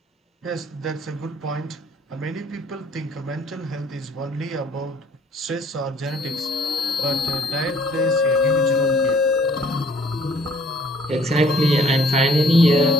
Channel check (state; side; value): normal; both; correlation 0.59